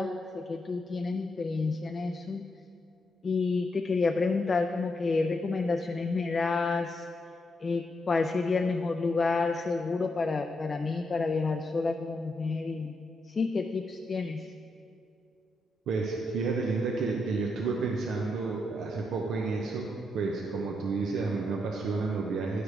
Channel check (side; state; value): both; normal; correlation 0.81